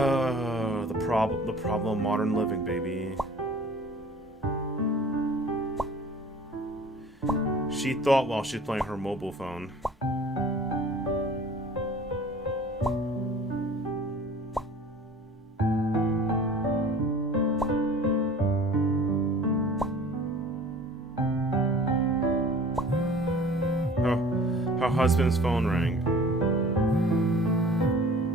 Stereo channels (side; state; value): both; normal; correlation 0.46